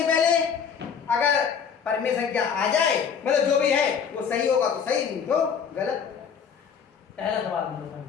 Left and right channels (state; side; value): quieter; right; 6.9 dB